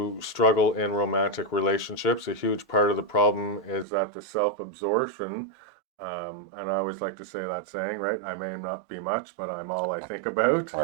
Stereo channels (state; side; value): drops out; left; at 3.9 s